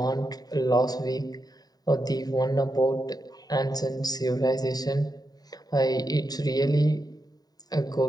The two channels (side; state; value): right; late; 0.19 ms